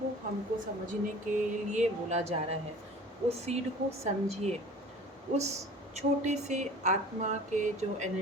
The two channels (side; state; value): both; normal; correlation 0.43